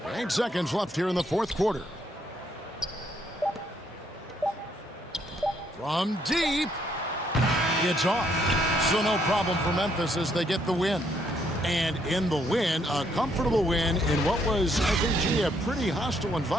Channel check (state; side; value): normal; both; correlation 0.71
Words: 8 seconds left here in the fourth quarter. From deep. It's off. So no problem for Memphis as they get the win. And in the win, a comfortable win in what was, I think, a pretty hostile